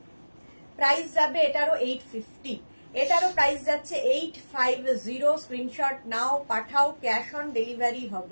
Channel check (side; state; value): both; inverted; correlation -1.00